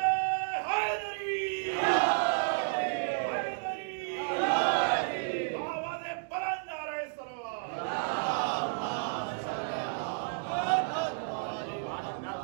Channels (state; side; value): silent; left; digital silence